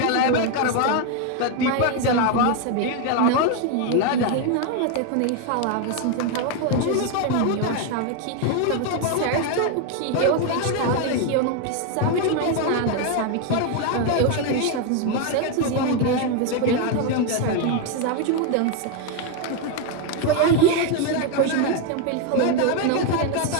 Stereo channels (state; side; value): different; both; correlation 0.01